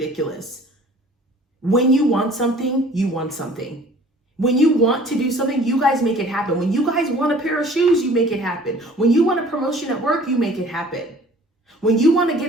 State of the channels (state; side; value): normal; both; correlation 0.50